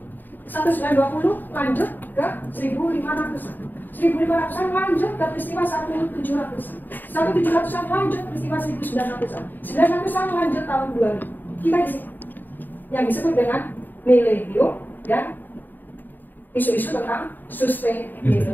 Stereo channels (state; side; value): late; right; 0.090 ms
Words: 1920 lanjut ke 1500-an. 1500-an lanjut ke peristiwa 1700-an. 1700-an lanjut peristiwa 1900-an. 1900-an lanjut tahun 2000. Kita di sini yang disebut dengan milenium dan isu-isu tentang